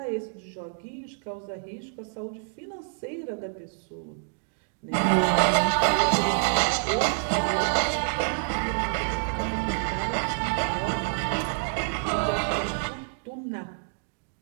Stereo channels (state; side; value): silent; left; digital silence